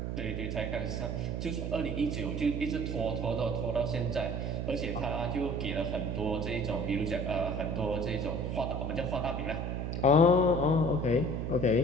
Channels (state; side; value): noise; right; hum, 2 dB below the sound